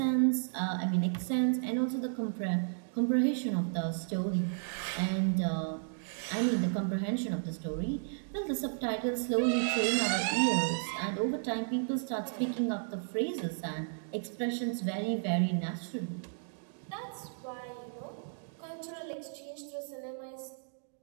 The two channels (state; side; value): silent; left; digital silence